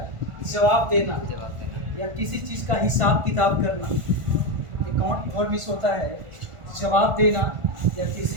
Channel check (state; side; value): late; left; 1.4 ms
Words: जवाब देना या किसी चीज़ का हिसाब किताब करना। अकाउंट फॉर मीन्स होता है जवाब देना या किसी